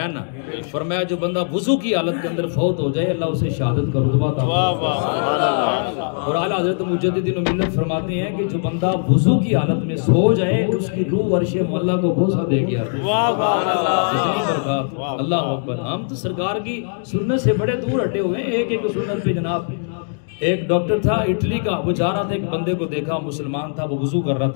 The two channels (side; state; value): right; silent; digital silence